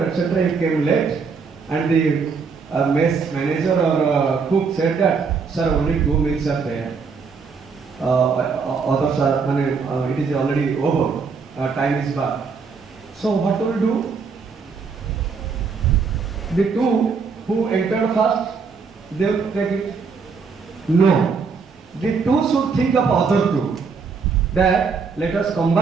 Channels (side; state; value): left; quieter; 5.2 dB